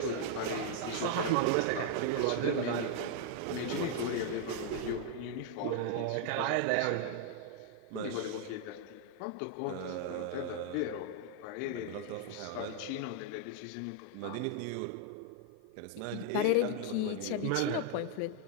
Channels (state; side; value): different; both; correlation 0.00